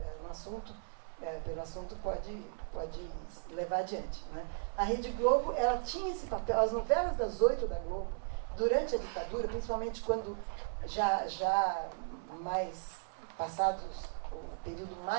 no assunto, pelo assunto, pode levar adiante, né? A Rede Globo, ela tinha esse papel. As novelas das 8 da Globo, durante a ditadura, principalmente quando já mais passados o período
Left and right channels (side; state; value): left; silent; 54 dB below the other